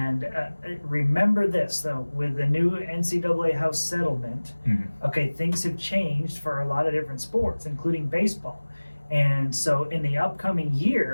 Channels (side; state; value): both; inverted; correlation -1.00